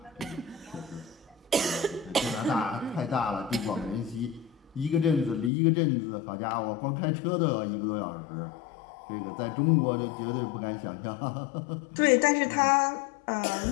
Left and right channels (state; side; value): drops out; right; at 5.5 s